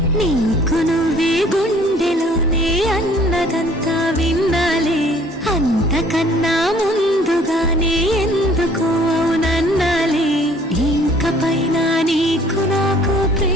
నీకు నువ్వే గుండెలోనే అన్నదంతా విన్నాలే, అంతకన్నా ముందుగానే ఎందుకు అవునన్నాలే. ఇంక పైన నీకు నాకు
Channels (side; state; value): both; normal; correlation 0.56